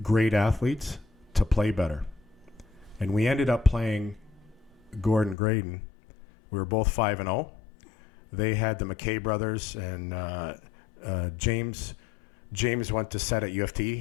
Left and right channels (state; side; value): drops out; right; at 5.4 s